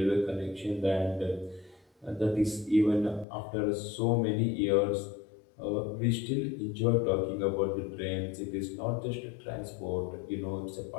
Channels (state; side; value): drops out; right; at 3.2 s